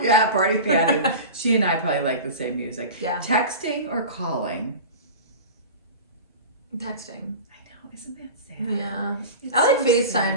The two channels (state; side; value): inverted; both; correlation -0.32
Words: Party Patty. She and I probably like the same music. Yeah. Texting or calling? Texting. I know, isn't that sad? Yeah. It's I like so